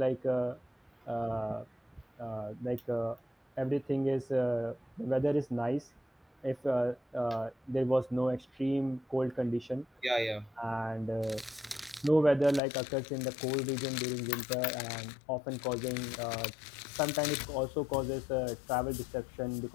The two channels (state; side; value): drops out; right; at 12.6 s